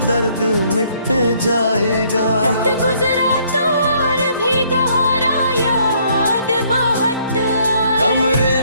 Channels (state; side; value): inverted; both; correlation -0.65